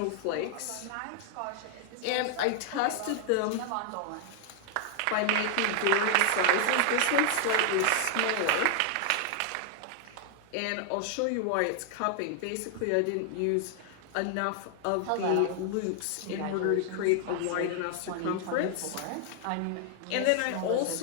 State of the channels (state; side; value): different; both; correlation 0.00